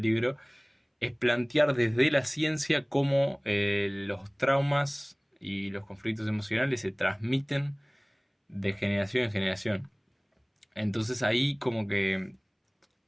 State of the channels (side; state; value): both; identical; correlation 1.00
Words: libro es plantear desde la ciencia cómo los traumas y los conflictos emocionales se transmiten de generación en generación. Entonces ahí como que